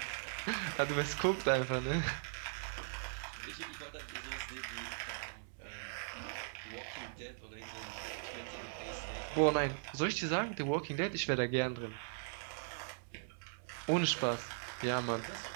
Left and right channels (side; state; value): left; silent; 52 dB below the other